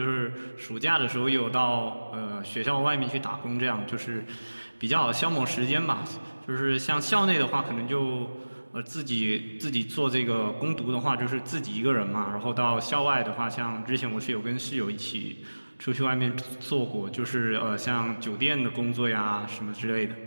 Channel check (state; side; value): inverted; both; correlation -1.00